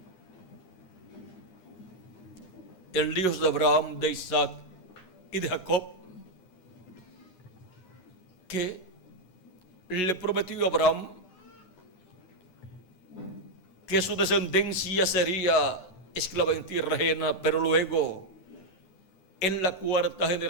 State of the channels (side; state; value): right; late; 11 ms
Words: El Dios de Abraham, de Isaac y de Jacob, que le prometió a Abraham que su descendencia sería esclava en tierra ajena, pero luego en la cuarta